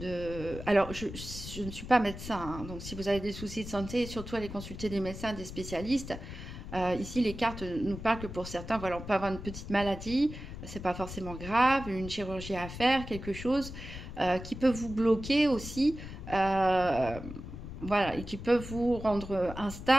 alors je ne suis pas médecin, hein, donc si vous avez des soucis de santé, surtout allez consulter des médecins, des spécialistes. Ici les cartes nous parlent que pour certains, voilà, on peut avoir une petite maladie, c'est pas forcément grave, une chirurgie à faire, quelque chose qui peut vous bloquer aussi, voilà, et qui peut vous rendre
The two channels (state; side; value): noise; left; rumble, 10 dB below the sound